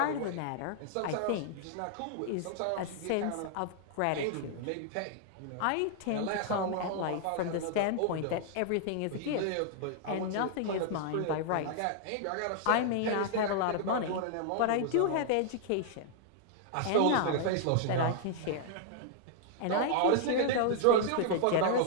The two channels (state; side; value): different; both; correlation -0.01